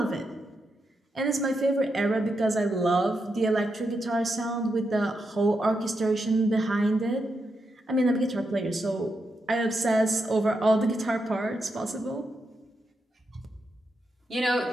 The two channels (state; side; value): normal; both; correlation 0.85